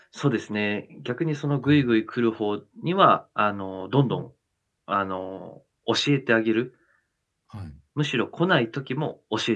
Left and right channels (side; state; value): both; identical; correlation 1.00